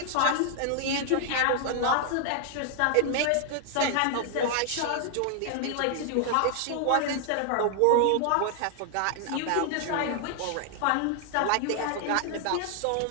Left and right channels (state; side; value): different; both; correlation 0.00